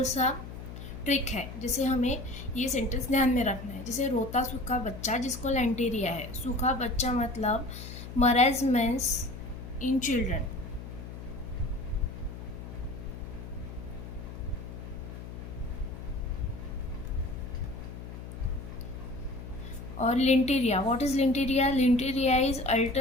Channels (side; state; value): left; noise; hum, 11 dB below the sound